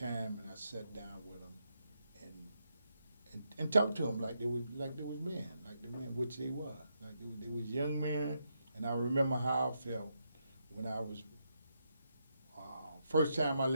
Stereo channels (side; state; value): both; inverted; correlation -0.81